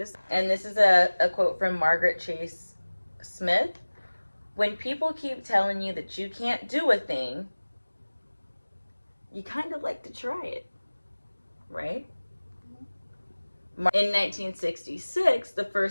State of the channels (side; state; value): both; inverted; correlation -1.00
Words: And this is a quote from Margaret Chase Smith. When people keep telling you that you can't do a thing, you kind of like to try it, right? In 1966, the